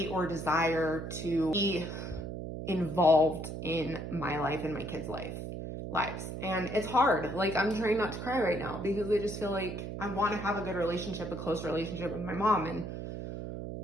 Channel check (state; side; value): noise; right; hum, 7 dB below the sound